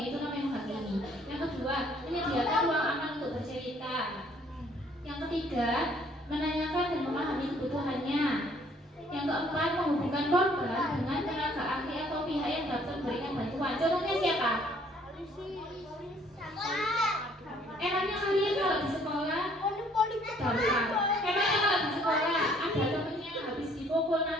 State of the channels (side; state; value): both; normal; correlation 0.61